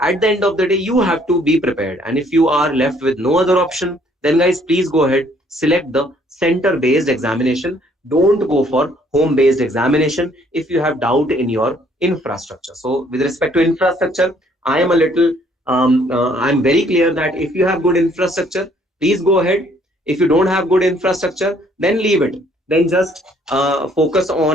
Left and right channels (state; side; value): normal; both; correlation 0.63